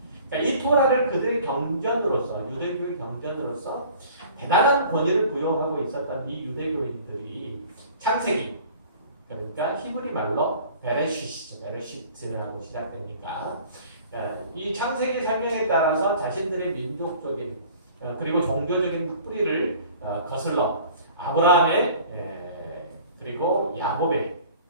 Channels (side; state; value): both; inverted; correlation -0.48